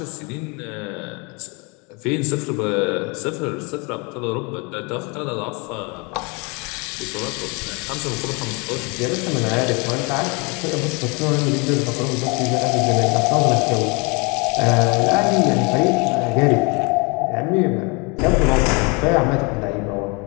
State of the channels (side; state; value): right; quieter; 30.4 dB